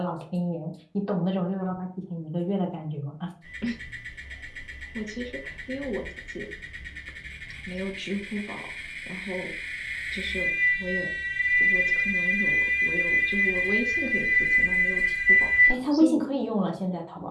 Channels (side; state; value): both; identical; correlation 1.00